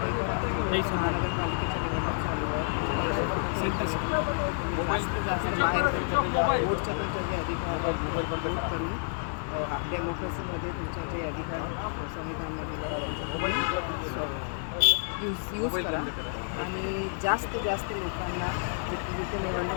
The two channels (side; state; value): right; silent; digital silence